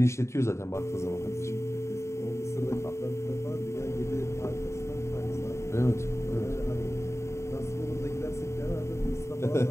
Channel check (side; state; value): right; late; 0.14 ms